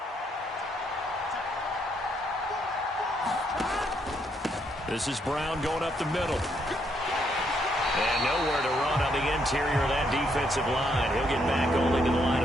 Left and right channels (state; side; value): normal; both; correlation 0.74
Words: This is Brown going up the middle. And nowhere to run on the interior of that defensive line. He'll get back only to the line